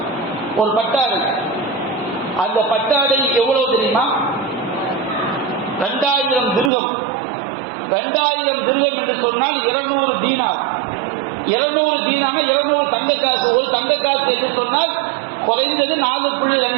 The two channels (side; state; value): left; drops out; at 6.7 s